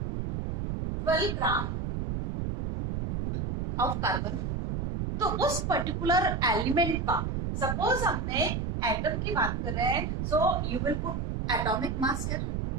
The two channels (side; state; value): right; noise; rumble, 1 dB below the sound